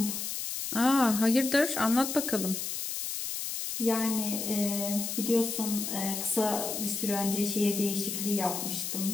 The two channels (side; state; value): left; noise; hiss, 4 dB below the sound